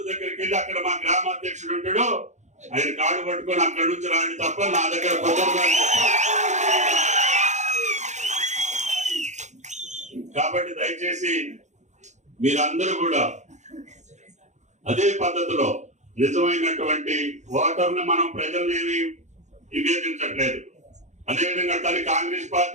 దగ్గరికి వెళ్ళి అక్కడ మా గ్రామాధ్యక్షుడు ఉంటాడు, ఆయన కాడు పట్టుకొని అక్కడి నుంచి రాండి తప్ప నా దగ్గర కుదరదు. కాబట్టి దయచేసి మీరందరూ కూడా అదే పద్ధతిలో నిజమైనటువంటి ఓటర్ని మనం ప్రజల్ని ఏమి విభేదించట్లేదు. అదేవిధంగా తను కాంగ్రెస్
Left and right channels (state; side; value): late; left; 0.34 ms